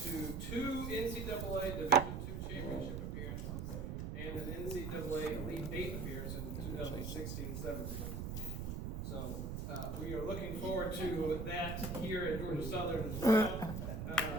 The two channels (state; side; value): noise; right; rumble, 4 dB below the sound